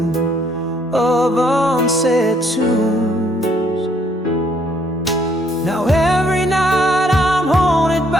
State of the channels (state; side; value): normal; both; correlation 0.67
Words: of unsaid tunes. Now every night I'm haunted